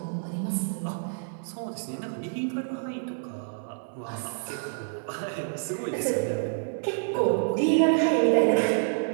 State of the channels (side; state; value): left; silent; 59 dB below the other